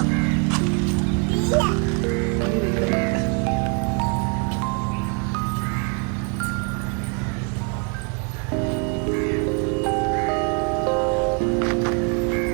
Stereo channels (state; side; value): quieter; left; 36.1 dB